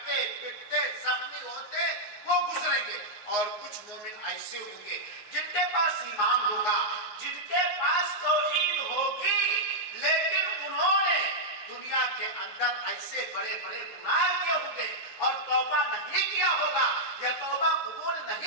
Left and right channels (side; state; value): right; late; 9.3 ms